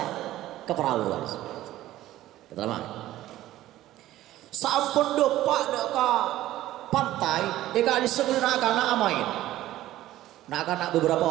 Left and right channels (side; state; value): left; quieter; 14.7 dB